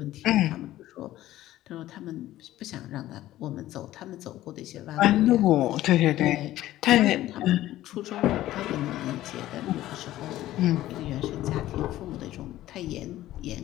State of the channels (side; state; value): right; quieter; 14.7 dB